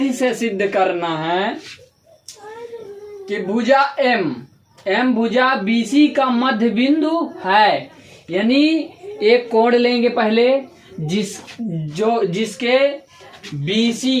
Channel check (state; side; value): identical; both; correlation 1.00